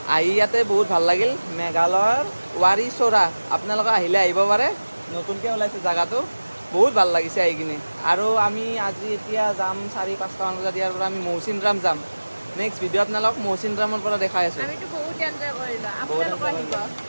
আহি ইয়াতে বহুত ভাল লাগিল, মেঘালয়ৰ ৱাৰী-চৰা। আপোনালোকে আহিলে আহিব পাৰে, নতুনকৈ ওলাইছে জেগাটো, বহুত ভাল লাগিছে আহি কিনে। আৰু আমি আজি এতিয়া যাম 4-5টা মান বজাত, ইয়াৰ পৰা আমি মৌচিনৰাম যাম। নেক্সট ভিডিঅ' আপোনালোকক মৌচিনৰামৰ পৰা দেখাই আছোঁ। আমিতো বহুত এনজয় কৰিলোঁ, আপোনালোকে আহিব।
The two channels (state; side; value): inverted; both; correlation -1.00